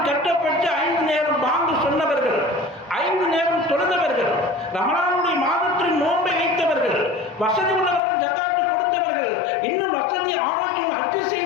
கட்டப்பட்டு 5 நேரம் பாங்கு சொன்னவர்கள், 5 நேரம் தொழுதவர்கள், ரமலானுடைய மாதத்தில் நோன்பை வைத்தவர்கள், வசதி உள்ளவர்கள் ஜக்காத்து கொடுத்தவர்கள், இன்னும் வசதி ஆரோக்கியம் ஹஜ்ஜு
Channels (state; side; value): drops out; right; at 8.0 s